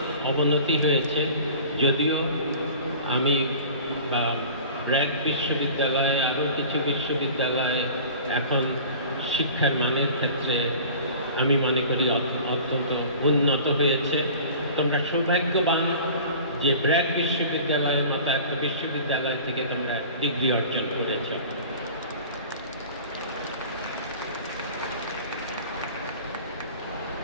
অবনতি হয়েছে। যদিও আমি ব্র্যাক বিশ্ববিদ্যালয়ে, আরও কিছু বিশ্ববিদ্যালয়ে এখন শিক্ষার মানের ক্ষেত্রে আমি মনে করি অত্যন্ত উন্নত হয়েছে। তোমরা সৌভাগ্যবান যে ব্র্যাক বিশ্ববিদ্যালয়ের মতো একটা বিশ্ববিদ্যালয় থেকে তোমরা ডিগ্রি অর্জন করেছ।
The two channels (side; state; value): both; inverted; correlation -0.42